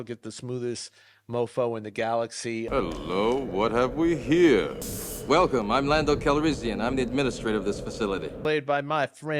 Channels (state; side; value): identical; both; correlation 1.00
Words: get the smoothest mofo in the galaxy. Hello, what have we here? Welcome, I'm Lando Calrissian. I'm the administrator of this facility. Played by my